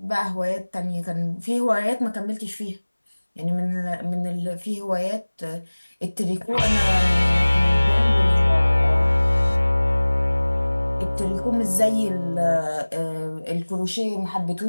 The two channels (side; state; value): both; inverted; correlation -1.00